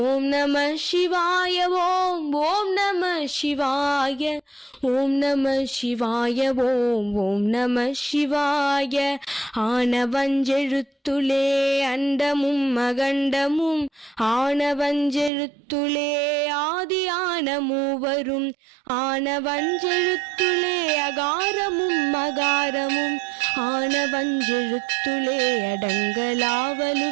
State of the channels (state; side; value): drops out; left; at 15.3 s